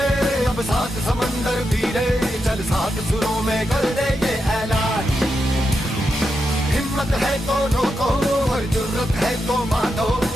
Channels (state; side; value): normal; both; correlation 0.86